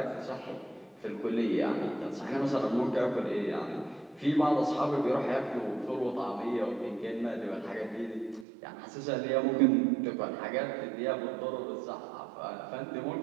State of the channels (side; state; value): left; drops out; at 8.5 s